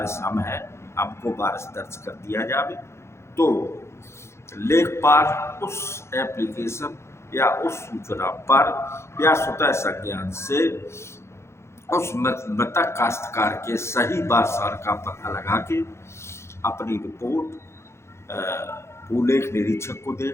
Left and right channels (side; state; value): right; late; 0.13 ms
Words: हम हैं, हमको वारिस दर्ज कर दिया जावे। तो लेखपाल उस एप्लीकेशन या उस सूचना पर या स्वतः संज्ञान से उस मृतक काश्तकार के सही वारसार का पता लगा के अपनी रिपोर्ट भूलेख निरीक्षक को